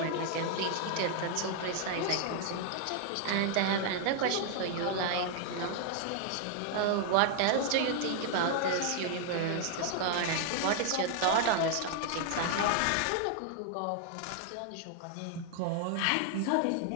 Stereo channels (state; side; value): different; both; correlation 0.00